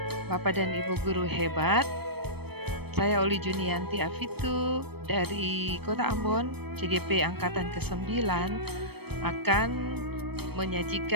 Bapak dan Ibu guru hebat. Saya Oli Junianti Afitu dari Kota Ambon, CGP Angkatan ke-9 akan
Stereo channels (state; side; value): late; left; 0.97 ms